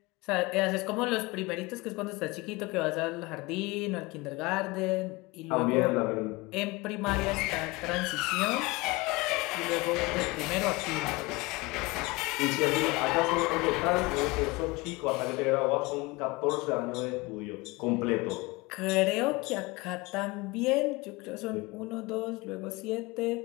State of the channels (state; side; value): quieter; right; 23.6 dB